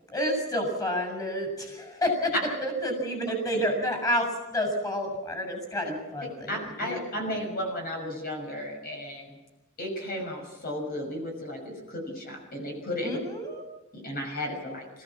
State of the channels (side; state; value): both; normal; correlation 0.16